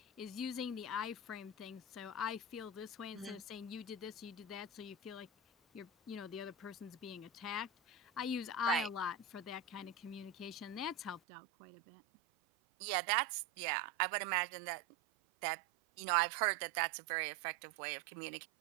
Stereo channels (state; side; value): drops out; left; at 11.2 s